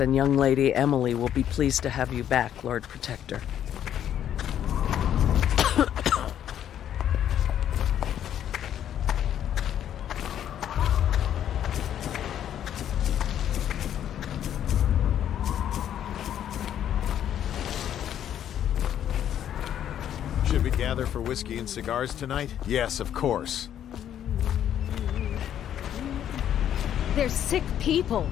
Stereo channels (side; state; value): right; quieter; 10.3 dB